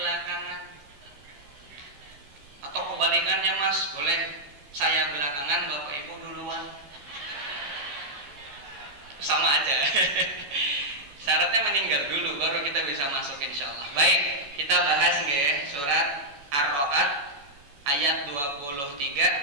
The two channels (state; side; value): late; left; 14 ms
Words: Atau kebalikannya Mas, boleh saya belakangan, Bapak Ibu duluan. Sama aja. Syaratnya meninggal dulu baru kita bisa masuk insyaallah. Baik, kita bahas nggih surat Ar-Ra'd ayat